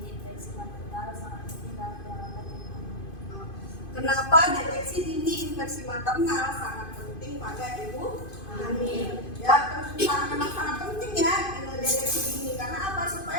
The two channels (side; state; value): right; late; 2.5 ms